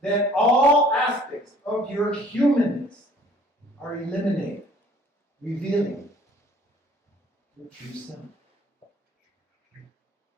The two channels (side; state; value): both; normal; correlation 0.54